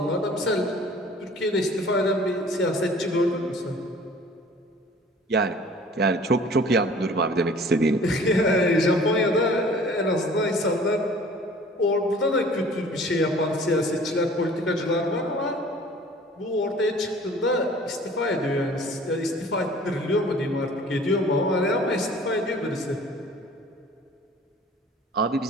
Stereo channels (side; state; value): both; normal; correlation 0.49